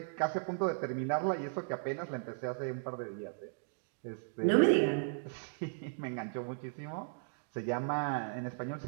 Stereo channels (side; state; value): left; silent; digital silence